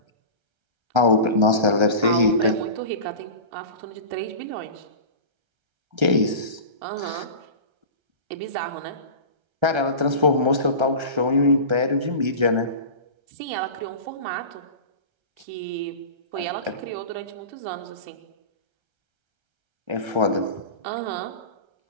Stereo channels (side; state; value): left; late; 1.3 ms